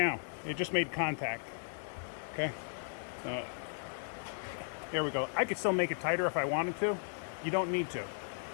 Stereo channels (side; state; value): right; silent; 54 dB below the other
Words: it just made contact. Okay? There we go. I could still make it tighter if I wanted to. You don't need to.